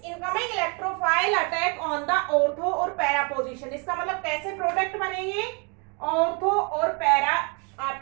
incoming electrophile attack on the ortho और पैरा पोजीशन। इसका मतलब कैसे प्रोडक्ट बनेंगे, ऑर्थो और पैरा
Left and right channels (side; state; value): left; quieter; 34.0 dB